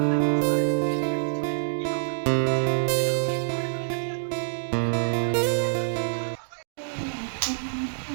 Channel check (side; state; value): left; silent; digital silence